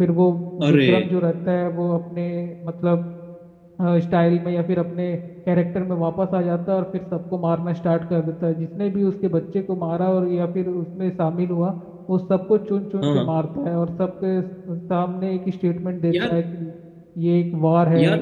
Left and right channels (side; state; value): both; identical; correlation 1.00